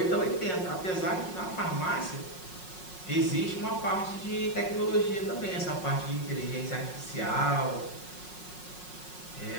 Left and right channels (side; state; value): right; late; 5.5 ms